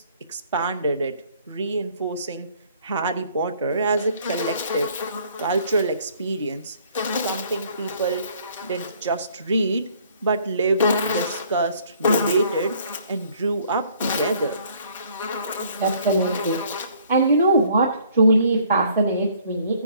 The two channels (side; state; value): both; inverted; correlation -0.60